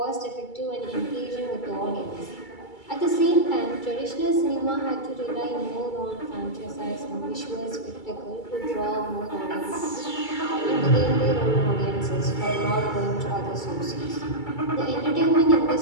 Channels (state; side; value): late; right; 2.3 ms